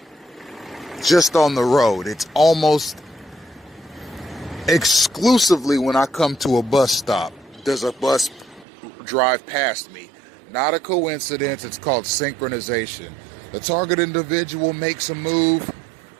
just on the road. It's almost exclusively when I come to a bus stop does a bus drive past me. Not a coincidence, it's called synchronization. The target individual makes a move,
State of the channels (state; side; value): drops out; left; at 8.7 s